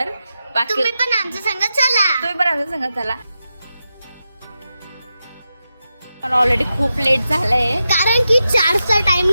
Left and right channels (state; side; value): inverted; both; correlation -0.89